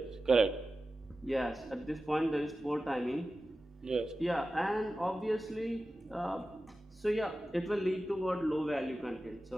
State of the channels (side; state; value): both; normal; correlation 0.94